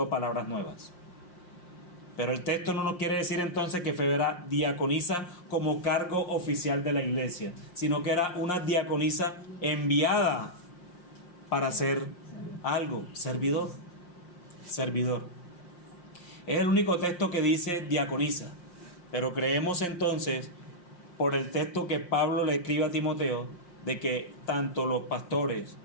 palabras nuevas. Pero el texto no nos quiere decir entonces que Febe era diaconisa como cargo oficial de la iglesia, sino que era una diaconisa enviada para hacer algo, servidor. Servidor. Es el único texto que dice diaconisa, pero creemos entonces, por el texto que Pablo le escribe a Timoteo, de que tanto los pastores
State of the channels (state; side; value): late; right; 5.6 ms